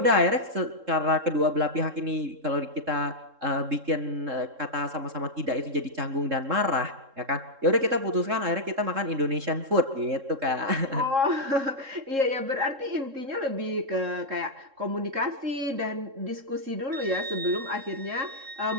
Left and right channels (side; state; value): left; late; 3.7 ms